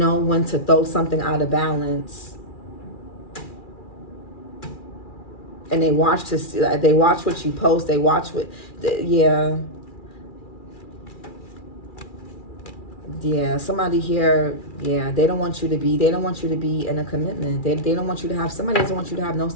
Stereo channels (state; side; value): late; right; 2.4 ms